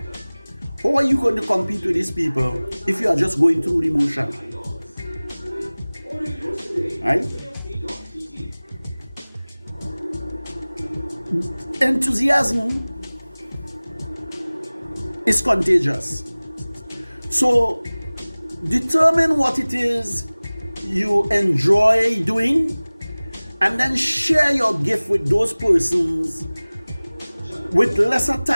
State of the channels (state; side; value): inverted; both; correlation -1.00